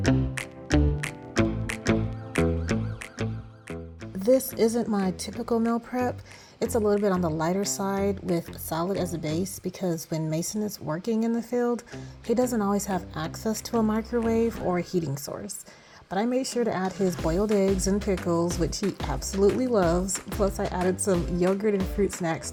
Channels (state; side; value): identical; both; correlation 1.00